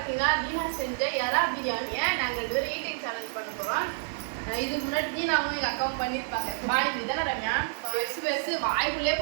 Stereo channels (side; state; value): left; silent; digital silence